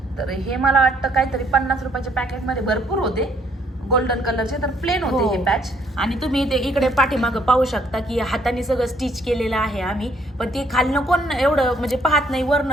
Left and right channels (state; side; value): normal; both; correlation 0.66